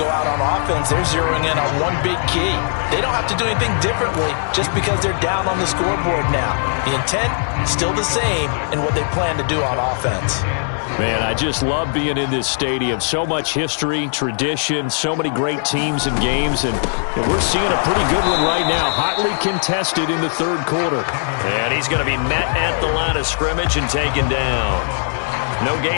out on offense, they're zeroing in on one big key. They don't have to do anything differently just because they're down on the scoreboard now. The intent, still the same in what they plan to do on offense. Man, I just love being in this stadium. So much history, tradition, so many great teams and games, and we're seeing a pretty good one right now, hotly contested in the 3rd quarter. And he's going to be met at the line of scrimmage and taken down. No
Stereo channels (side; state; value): right; silent; digital silence